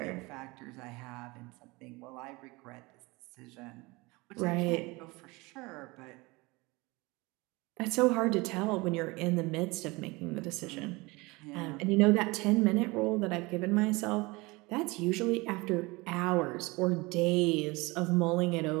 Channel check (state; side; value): quieter; left; 23.9 dB